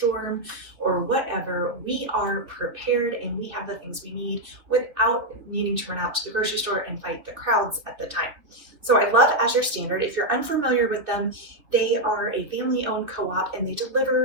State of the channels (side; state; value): left; late; 2.7 ms